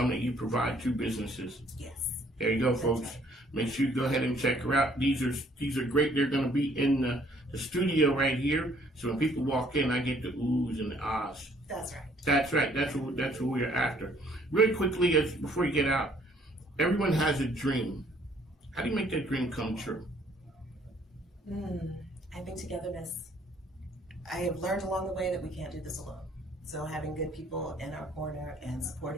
you provide to businesses. Yes. There you go, folks. Right. Make sure you go ahead and check her out. These are great. They're going to be in the studio right here. So when people walk in, I get the oohs and the ahs. That's right. That's right. That's what we're after. Really quickly, before you get out, everyone has a dream. How do you make that dream come true? I think togetherness. I have learned along the way that we can't do this alone. So having good people in our corner and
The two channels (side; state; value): both; normal; correlation 0.61